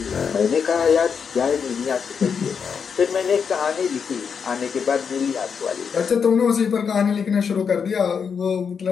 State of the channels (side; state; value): right; quieter; 6.4 dB